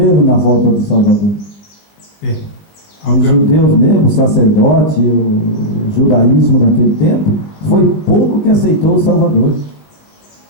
na volta do Salvador. Os judeus mesmo, o sacerdote, o judaísmo naquele tempo, foi pouco que aceitou o Salvador.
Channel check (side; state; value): right; late; 19 ms